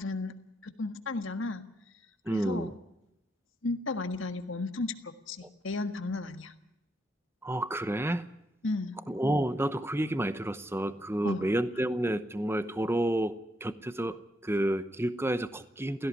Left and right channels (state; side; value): normal; both; correlation 0.78